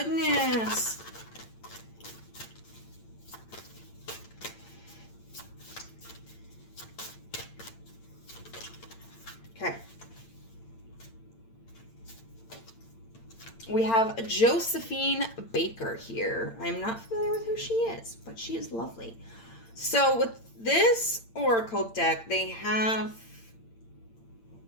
Okay. We have Josephine Baker here. I'm not familiar with who she is, but she is lovely. So with this oracle deck, they have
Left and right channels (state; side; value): late; right; 8.8 ms